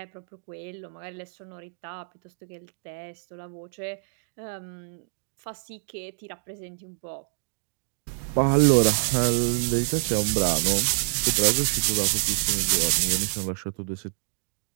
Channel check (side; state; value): left; silent; digital silence